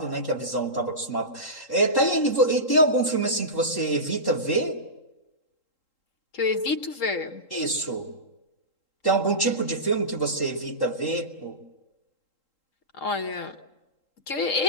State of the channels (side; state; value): right; late; 3.8 ms